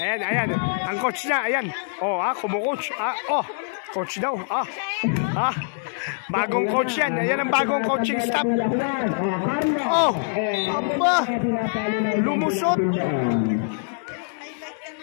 Ang coach niya, ayan. Oh, kumukoach. Coach daw. Bagong coach yan. Ayan ang bagong coaching staff. Oh, aba. Lumusot.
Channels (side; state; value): right; silent; digital silence